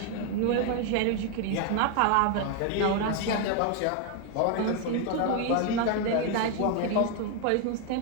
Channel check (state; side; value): different; both; correlation 0.01